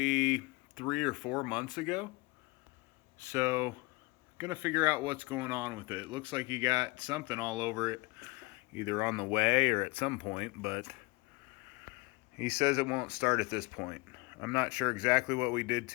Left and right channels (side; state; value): right; quieter; 25.0 dB